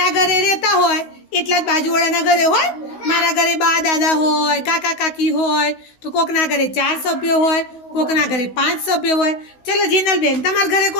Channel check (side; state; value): right; late; 16 ms